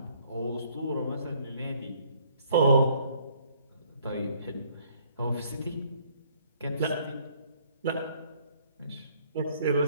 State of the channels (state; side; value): inverted; both; correlation -0.62